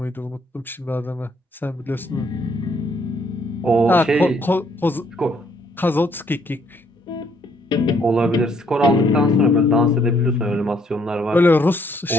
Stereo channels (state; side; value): normal; both; correlation 0.67